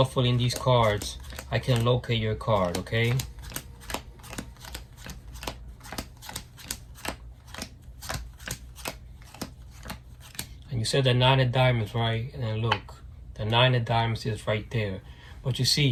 these cards I can locate your card, okay? And you said the 9 of diamonds, right? And then look, the 9 of diamonds is right there. But you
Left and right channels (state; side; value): identical; both; correlation 1.00